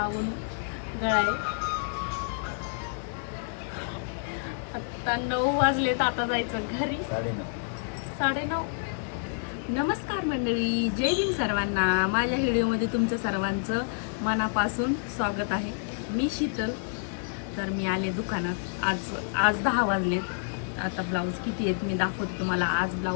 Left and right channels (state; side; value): silent; right; digital silence